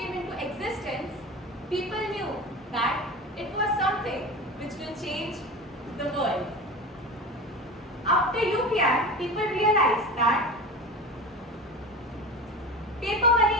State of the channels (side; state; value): both; normal; correlation 0.30